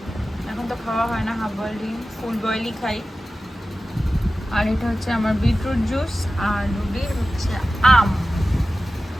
এখন তো খাওয়া হয় না হাফ বয়েল ডিম, ফুল বয়েলই খাই। আর এটা হচ্ছে আমার বিটরুট জুস। আর রুটির হচ্ছে আম।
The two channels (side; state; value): both; normal; correlation 0.95